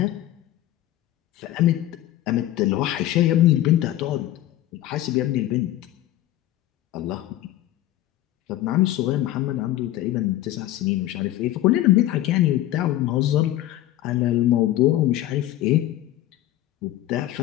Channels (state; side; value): quieter; right; 14.2 dB